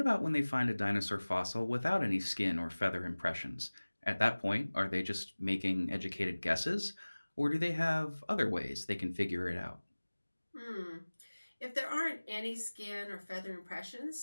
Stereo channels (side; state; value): both; inverted; correlation -1.00